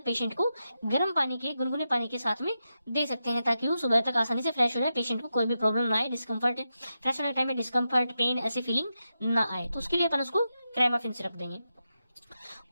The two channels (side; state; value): both; inverted; correlation -0.88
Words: पेशेंट को गर्म पानी के, गुनगुने पानी के साथ में दे सकते हैं, ताकि वो सुबह तक आसानी से फ्रेश हो जाए, पेशेंट को कोई भी प्रॉब्लम ना आए, डिस्कम्फर्ट, फ्रेश होने के टाइम में डिस्कम्फर्ट, पेन, ऐसी फीलिंग ना आए। तो उसके लिए अपन उसको क्रेमाफिन सिरप देंगे।